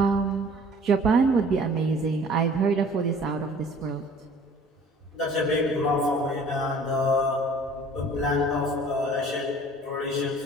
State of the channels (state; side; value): normal; both; correlation 0.50